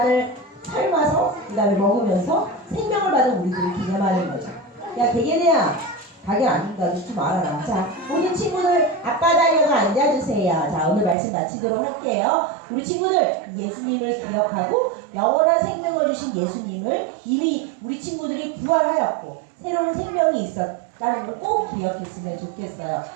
삶아서 그 다음에 먹으면서 생명을 받은 우리들을 기념하는 거죠. 야, 대개네야 닭이 안 준다도 좀 알아라. 자, 모든 친구들 앞바다려가 앉아주세요. 자, 오늘 말씀 마치도록 할게요. 우리 친구들 예수님을 기억하고 영원한 생명을 주신 예수님을 이미 우리 친구들이 부활하였고 새로운 생명이 있었다는 걸 꼭 기억했으면 좋겠어요.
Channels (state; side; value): drops out; left; at 11.2 s